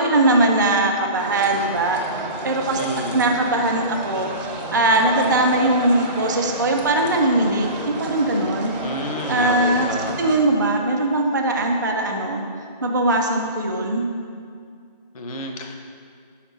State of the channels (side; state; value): both; inverted; correlation -0.33